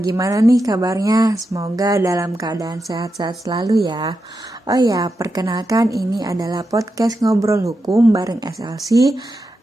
nih kabarnya? Semoga dalam keadaan sehat-sehat selalu ya. Oh ya, perkenalkan ini adalah podcast Ngobrol Hukum bareng SLC.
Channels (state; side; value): normal; both; correlation 0.88